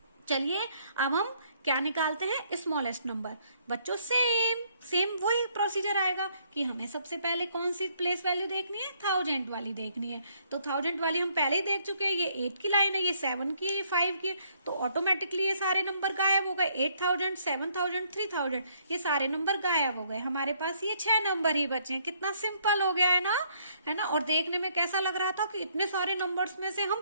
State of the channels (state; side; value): inverted; both; correlation -0.68